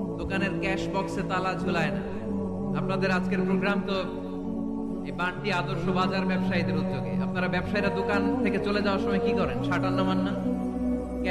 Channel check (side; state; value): both; identical; correlation 1.00